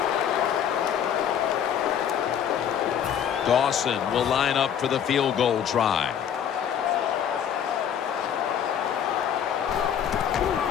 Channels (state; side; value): quieter; right; 8.8 dB